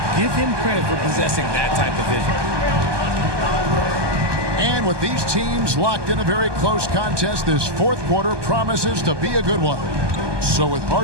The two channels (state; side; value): late; left; 1.2 ms